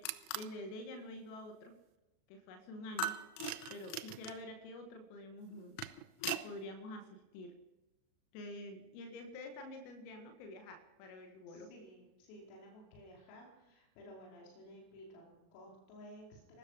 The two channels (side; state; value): right; late; 37 ms